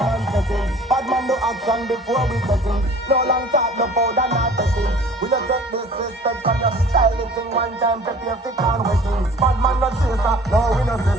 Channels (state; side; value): normal; both; correlation 0.48